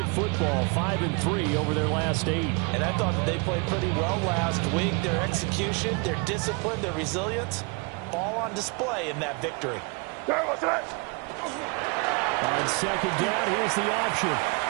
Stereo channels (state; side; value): quieter; left; 30.5 dB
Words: football, 5-3 over their last 8. And I thought that they played pretty well last week. Their execution, their discipline, their resilience, all on display in that victory. On second down, here's the option.